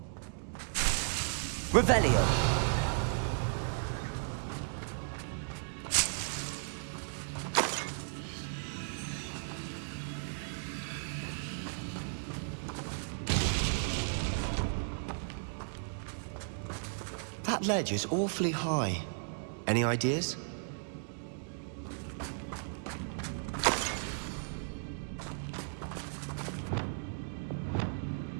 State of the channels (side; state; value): left; silent; digital silence